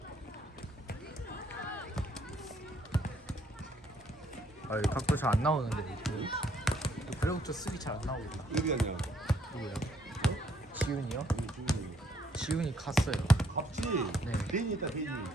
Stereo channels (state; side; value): normal; both; correlation 0.68